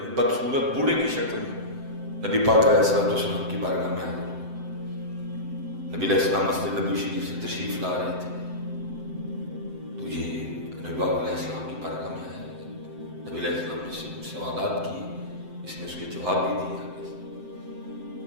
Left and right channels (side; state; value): left; late; 7.8 ms